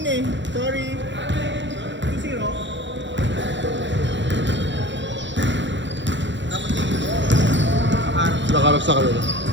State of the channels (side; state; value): left; late; 0.53 ms